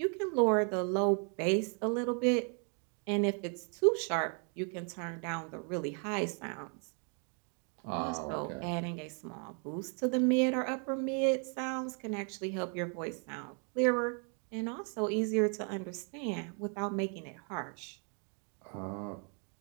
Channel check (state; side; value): quieter; left; 39.9 dB